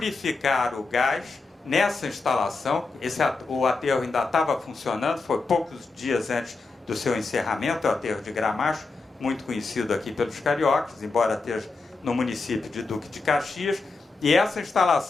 o gás nessa instalação. O aterro ainda estava funcionando, foi poucos dias antes do seu encerramento, o aterro de Gramacho, muito conhecido aqui pelos cariocas, embora esteja no município de Duque de Caxias. E essa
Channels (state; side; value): quieter; right; 3.9 dB